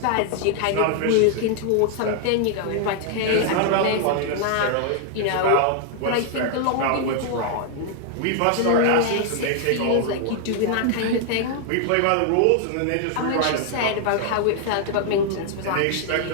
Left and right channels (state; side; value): different; both; correlation 0.00